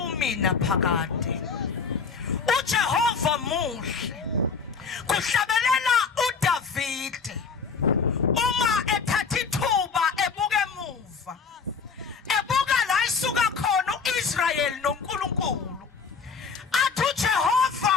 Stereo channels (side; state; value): right; quieter; 5.4 dB